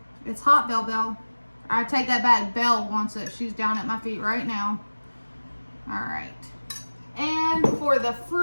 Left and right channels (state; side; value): inverted; both; correlation -1.00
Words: It's hot, Belle. I take that back. Belle wants it. She's down at my feet right now. All right. And for the